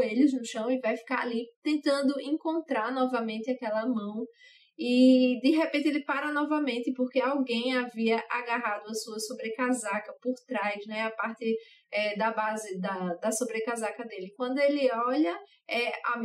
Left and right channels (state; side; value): identical; both; correlation 1.00